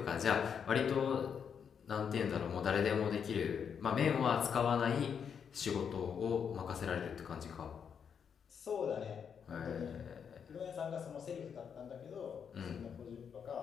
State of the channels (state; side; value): quieter; right; 7.2 dB